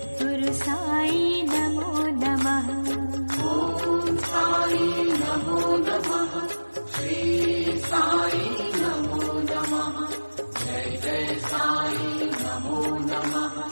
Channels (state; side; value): inverted; both; correlation -1.00